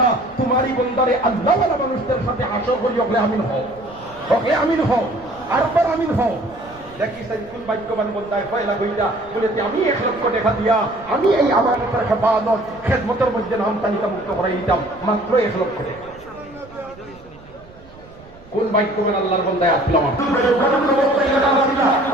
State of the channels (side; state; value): right; noise; rumble, 23 dB below the sound